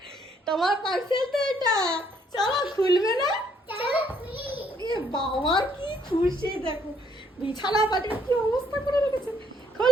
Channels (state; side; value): normal; both; correlation 0.68